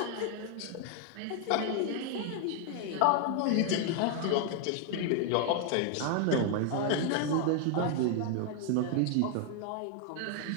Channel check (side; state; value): both; different; correlation 0.00